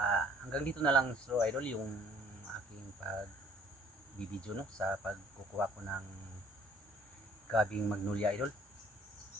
hanggang dito na lang, so idol, yung aking pag-video, no, sa pagkukuha ko ng gabing magnolia, idol.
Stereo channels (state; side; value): normal; both; correlation 0.56